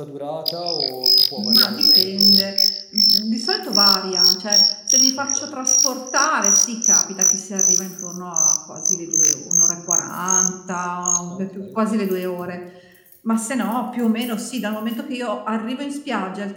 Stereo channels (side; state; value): both; identical; correlation 1.00